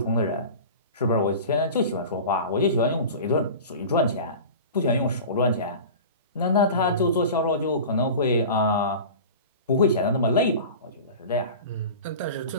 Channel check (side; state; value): both; inverted; correlation -0.35